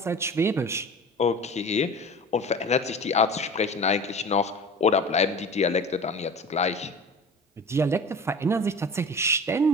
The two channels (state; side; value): normal; both; correlation 0.37